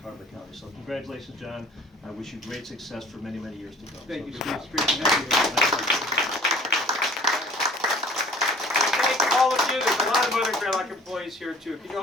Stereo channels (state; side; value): normal; both; correlation 0.49